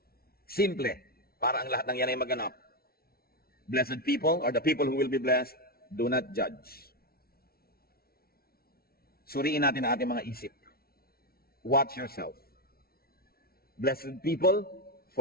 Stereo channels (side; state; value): right; late; 0.44 ms